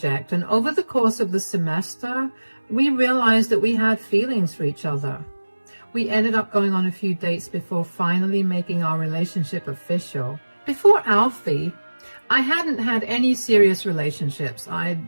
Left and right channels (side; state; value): both; inverted; correlation -1.00